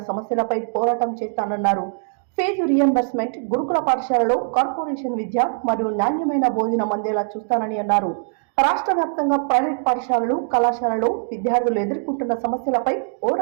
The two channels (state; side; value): silent; left; digital silence